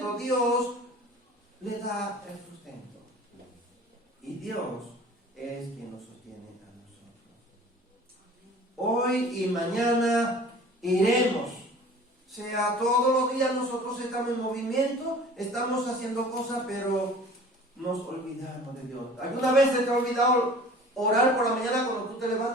Dios le da el sustento. Y Dios es quien nos sostiene a nosotros. Hoy y mañana iremos. sea, todos los días nosotros estamos en movimiento, estamos haciendo cosas, pero nos olvidamos de Dios. ¿Alguna vez se te ha olvidado orar por la mañana cuando tú te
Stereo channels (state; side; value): normal; both; correlation 0.45